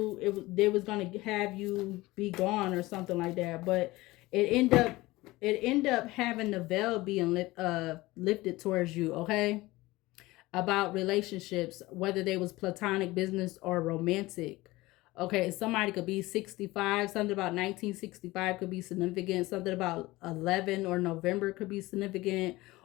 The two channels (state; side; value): quieter; right; 19.7 dB